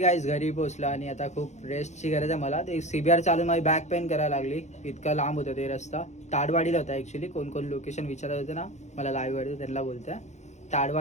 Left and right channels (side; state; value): right; late; 0.34 ms